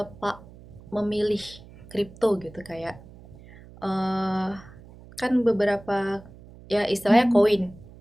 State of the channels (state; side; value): noise; right; hum, 20 dB below the sound